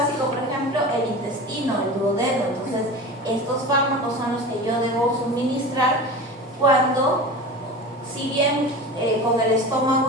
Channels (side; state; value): both; normal; correlation 0.32